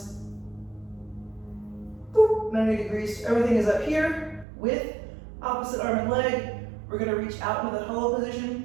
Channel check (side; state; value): left; drops out; at 4.5 s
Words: boop, 90 degrees. Everything is up here with opposite arm and leg. We're gonna reach out into the hollow